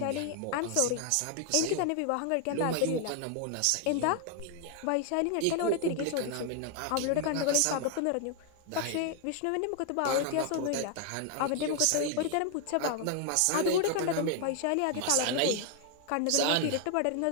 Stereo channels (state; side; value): different; both; correlation 0.00